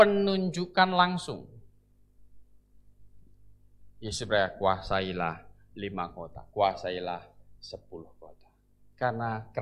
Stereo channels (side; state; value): both; identical; correlation 1.00